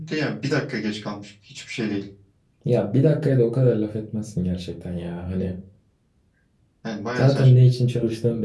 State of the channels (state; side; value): identical; both; correlation 1.00